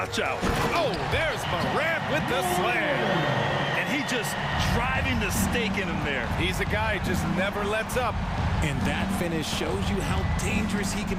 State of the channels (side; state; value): both; identical; correlation 1.00